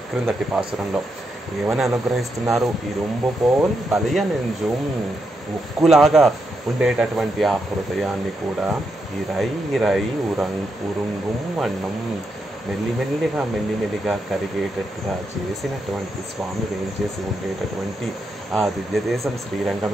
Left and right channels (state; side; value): normal; both; correlation 0.82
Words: క్రిందటి పాసురంలో ఏమని అనుగ్రహిస్తున్నారు? ఇరుంబు పోల్ బలియ నెంజుం, ఉక్కులాగా ఉండేటటువంటి ఆ హృదయాన్ని కూడా ఇరై ఉరుంగుం వన్నం, మెల్లిమెల్లిగా కరిగేటట్టుగా చేసినటువంటి స్వామి వేయించేసి ఉండేటటువంటి ఆ దివ్యదేశం